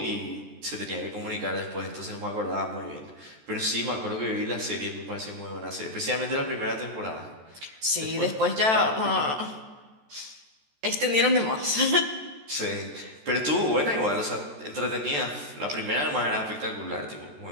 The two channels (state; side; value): late; left; 14 ms